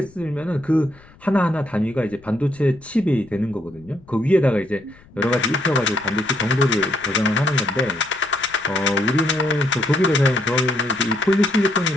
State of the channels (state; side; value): noise; left; rumble, 25 dB below the sound